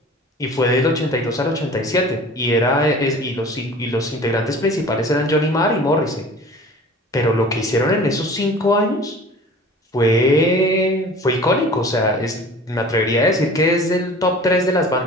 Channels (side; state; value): both; normal; correlation 0.43